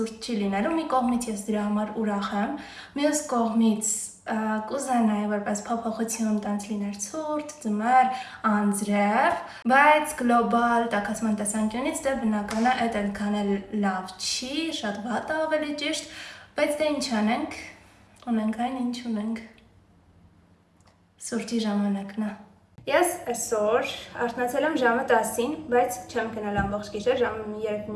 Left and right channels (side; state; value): both; identical; correlation 1.00